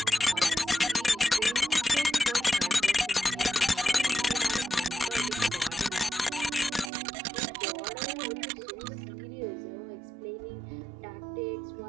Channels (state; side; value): drops out; left; at 6.9 s